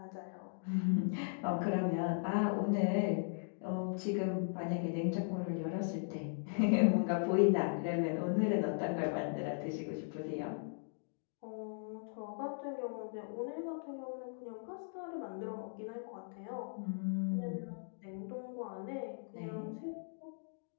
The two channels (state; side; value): silent; right; digital silence